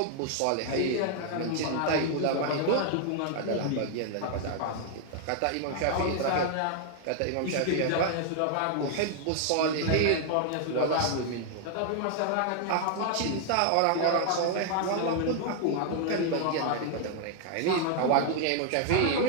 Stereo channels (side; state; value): both; different; correlation 0.00